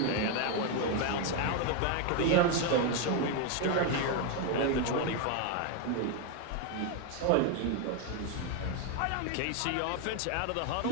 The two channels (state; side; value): different; both; correlation 0.01